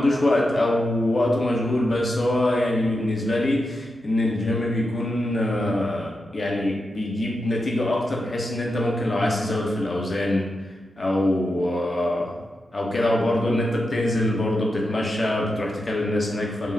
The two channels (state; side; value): normal; both; correlation 0.88